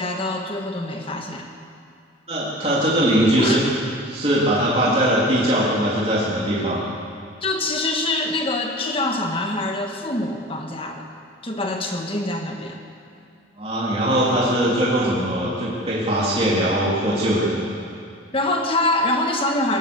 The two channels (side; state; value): both; normal; correlation 0.36